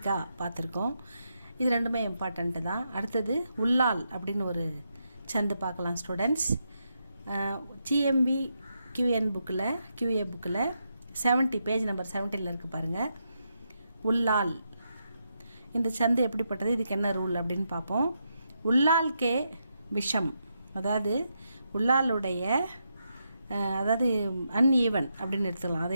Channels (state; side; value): inverted; both; correlation -0.83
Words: பார்த்துருக்கோம். இது ரெண்டுமே இம்பார்ட்டண்ட்டு தான். அடுத்தது உள்ளால் அப்படின்னு ஒரு சந்து பார்க்கலாம் ஸ்டூடெண்ட்ஸ். ஜிஎம்பி QA புக்கில் 70 பேஜ் நம்பர் 70 இருக்குது பாருங்கள். உள்ளால் இந்த சந்து எப்படிப்பட்டது, இதுக்கு என்ன ரூல் அப்படின்னு பார்ப்போம். உள்ளால்கே விஷம், அதாவது உள்ளாலுடைய அதாவது அன்ஈவன் அப்படின்னு எடுத்துக்கலாம். அது